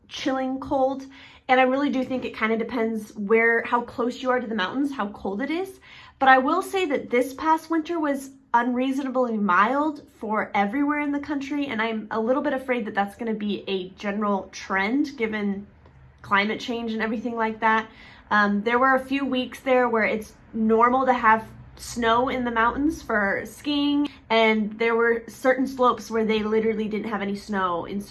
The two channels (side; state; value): both; identical; correlation 1.00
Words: chilling cold. And I really do think it kind of depends how close you are to the mountains, how cold it is. But I will say that this past winter was unreasonably mild for everywhere in the country, and I'm a little bit afraid that that's going to be a general trend given climate change and everything like that. There were a few weeks there where it's normal to have snow in the mountains for skiing, and there were certain slopes where they literally didn't have any snow in